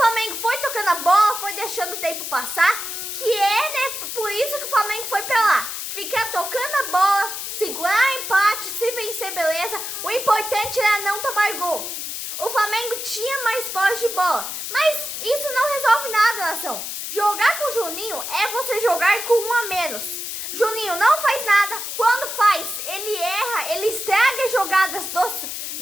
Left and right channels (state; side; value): noise; left; hiss, 5 dB below the sound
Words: foi tocando a bola, foi deixando o tempo passar, que é, né, por isso que o Flamengo foi pra lá. Ficar tocando a bola, segurar empate, se vencer, beleza. O importante era não tomar gol. O Flamengo tinha mais posse de bola, mas isso não resolve nada, nação. Jogar com o Juninho é você jogar com um a menos. Juninho não faz nada, quando faz, ele erra, ele estraga as jogadas